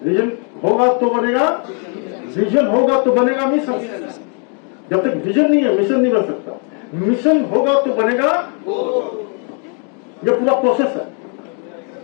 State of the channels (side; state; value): right; quieter; 40.0 dB